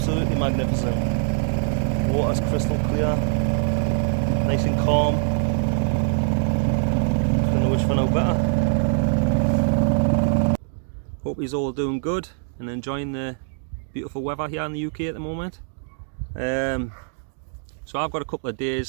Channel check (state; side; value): silent; left; digital silence